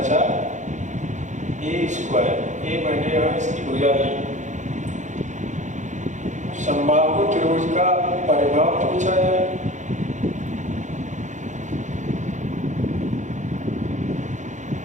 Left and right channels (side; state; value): left; late; 0.35 ms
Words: a²। ए मैंने यहाँ इसकी भुजा ली। समबाहु त्रिभुज का परिमाप पूछा जाए,